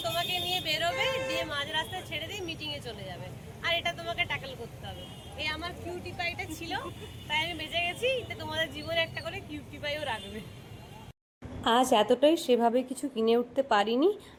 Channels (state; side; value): identical; both; correlation 1.00